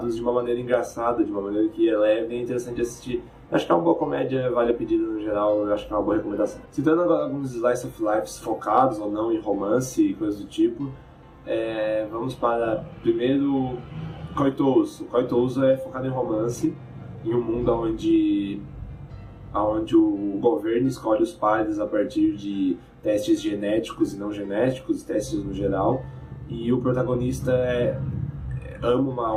de uma maneira engraçada, de uma maneira que é leve e é interessante assistir. Acho que é uma boa comédia, vale a pedida no geral, eu acho que é uma boa recomendação. Citando agora alguns slice of life focados ou não em romance e coisas do tipo, vamos para, primeiro, Koitouso. Koitouso é focado em romance, em um mundo onde o governo escolhe os pares a partir de testes genéticos e não genéticos, testes no geral, e o protagonista ama uma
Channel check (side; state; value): both; identical; correlation 1.00